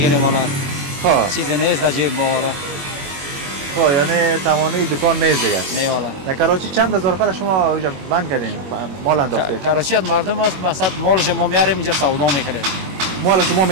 والا. خب چیزی نیست در جیب ما والا. خب یعنی تمامی دکان نیست دیگه. نه والا. در کراچی چند هزار نفر شما اینجا بند کردین مال انداخته؟ کراچی از مردم است مثلا مالش ما میاریم اینجا سودا میکنه. مال شما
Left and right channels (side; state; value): left; late; 21 ms